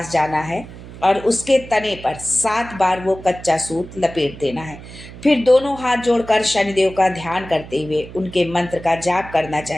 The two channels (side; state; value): right; noise; hum, 15 dB below the sound